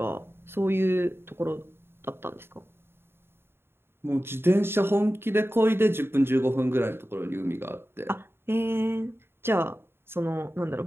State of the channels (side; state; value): left; late; 0.11 ms